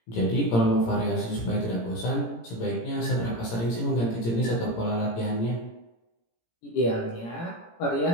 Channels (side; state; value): right; late; 17 ms